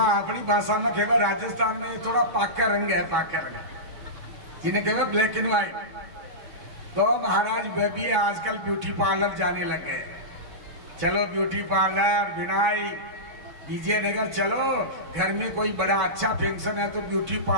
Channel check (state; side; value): late; left; 6.1 ms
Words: अपनी भाषा में कहेगा राजस्थान में थोड़ा पाका रंग है, पाका रंग, जिन्हें कहेगा ब्लैक एंड व्हाइट। तो महाराज वे भी आजकल ब्यूटी पार्लर जाने लगे। चलो ब्यूटी पार्लर, बिनाई, विजयनगर, चलो घर में कोई बड़ा अच्छा फंक्शन है तो ब्यूटी